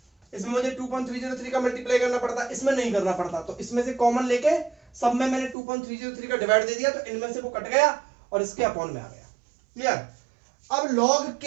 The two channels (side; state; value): left; drops out; at 5.6 s